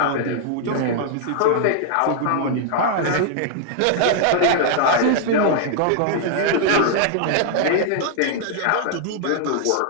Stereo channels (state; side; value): different; both; correlation 0.00